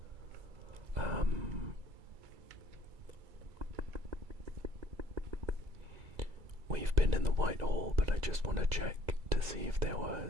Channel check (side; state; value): left; late; 2.3 ms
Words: We've been in the White Hall, but I just want to check to see if there